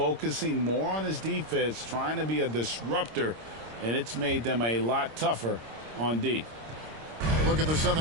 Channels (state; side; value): late; left; 26 ms